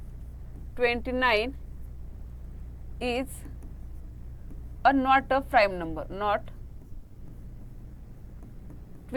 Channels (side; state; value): both; identical; correlation 1.00